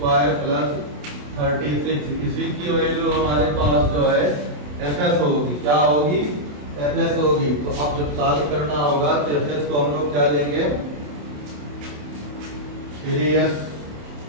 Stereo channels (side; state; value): left; late; 27 ms